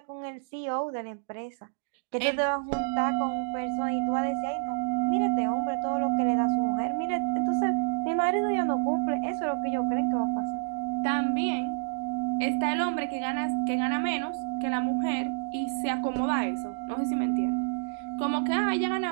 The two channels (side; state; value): left; silent; digital silence